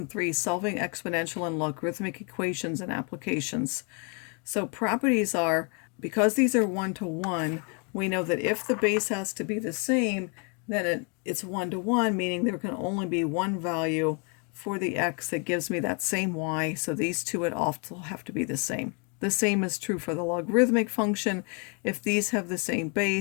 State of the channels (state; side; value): quieter; right; 36.1 dB